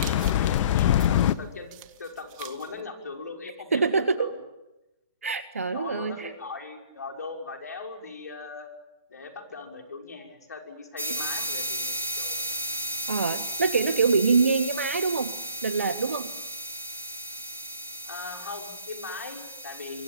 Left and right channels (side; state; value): both; inverted; correlation -0.56